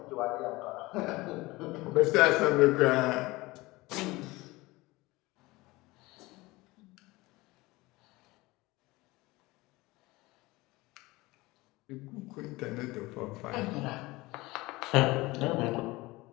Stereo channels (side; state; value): right; quieter; 21.2 dB